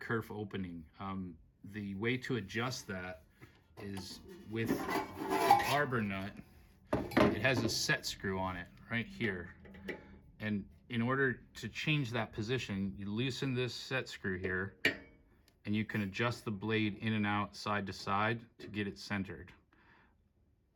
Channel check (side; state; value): both; identical; correlation 1.00